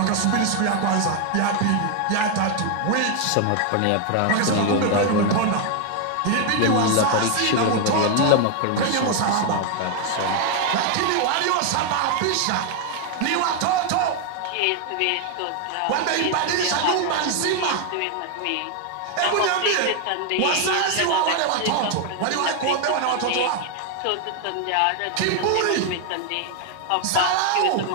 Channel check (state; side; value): different; both; correlation 0.00